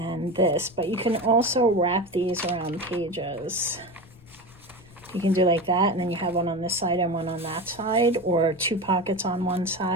this, but you can also wrap these around pages. You can do like that, and then you have one on this side and one on that side, or 2 pockets on one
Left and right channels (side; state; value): left; noise; rumble, 24 dB below the sound